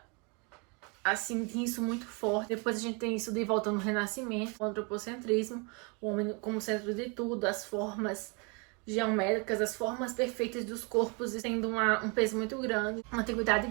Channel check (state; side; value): quieter; left; 32.2 dB